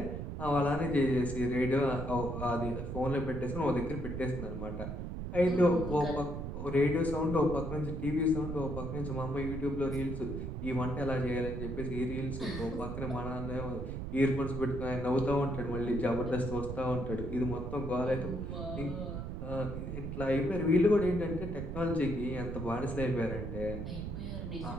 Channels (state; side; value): noise; right; rumble, 5 dB below the sound